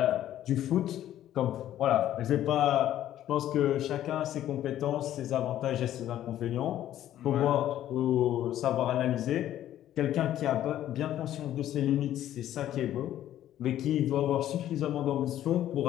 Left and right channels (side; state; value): right; quieter; 12.3 dB